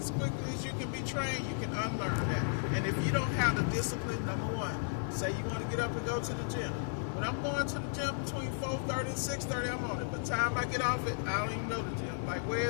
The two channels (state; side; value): silent; right; 55 dB below the other